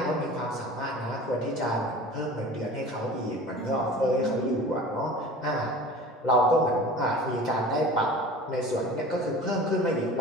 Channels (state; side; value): normal; both; correlation 0.40